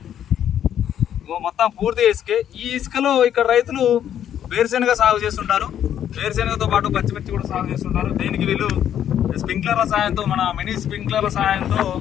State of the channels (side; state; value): right; quieter; 10.1 dB